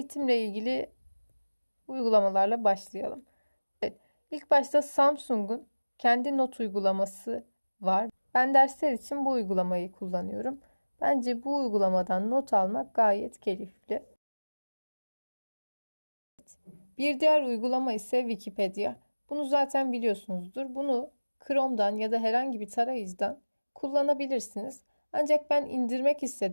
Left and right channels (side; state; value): both; inverted; correlation -1.00